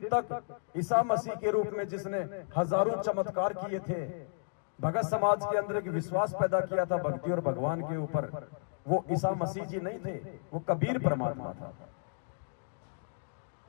तक ईसा मसीह के रूप में जिसने हजारों चमत्कार किए थे, भगत समाज के अंदर एक विश्वास पैदा किया था भक्ति और भगवान के ऊपर, वो ईसा मसीह जी नहीं थे, वो कबीर परमात्मा था।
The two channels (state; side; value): silent; right; digital silence